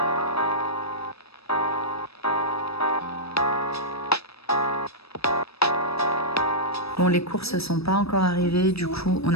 Bon, les courses sont pas encore arrivées, du coup on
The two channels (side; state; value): right; late; 0.78 ms